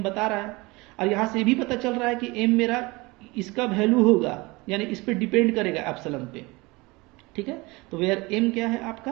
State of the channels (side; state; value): left; quieter; 23.7 dB